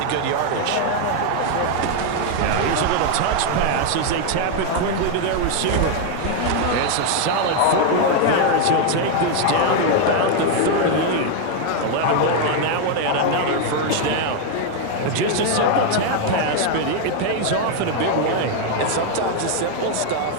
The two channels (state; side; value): different; both; correlation 0.00